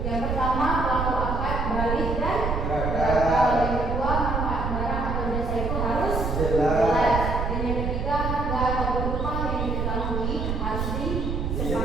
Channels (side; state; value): right; noise; rumble, 2 dB below the sound